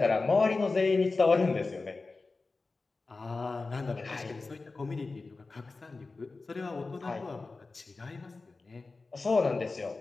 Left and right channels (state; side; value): quieter; right; 3.8 dB